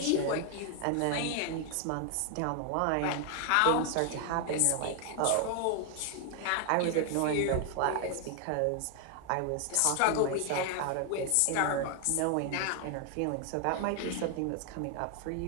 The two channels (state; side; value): different; both; correlation 0.00